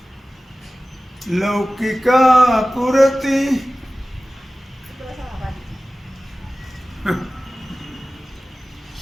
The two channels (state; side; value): normal; both; correlation 0.96